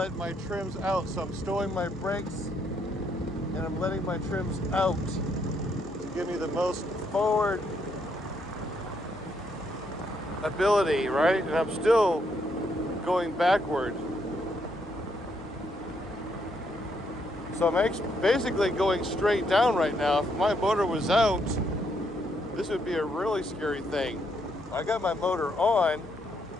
my trims out. So I'm stowing my brakes and I'm letting my trims out to give me the most forward ability, right? And I'm still going backward. So I'm basically going straight down right now. If my motor was out, this would be a really scary thing. I got my motor on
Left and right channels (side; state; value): left; noise; hum, 21 dB below the sound